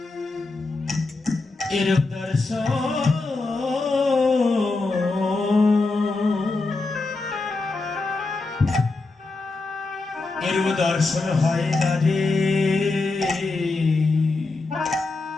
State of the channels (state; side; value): quieter; right; 3.5 dB